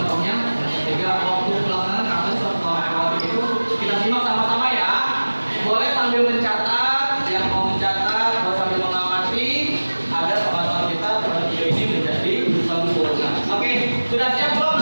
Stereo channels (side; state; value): both; inverted; correlation -1.00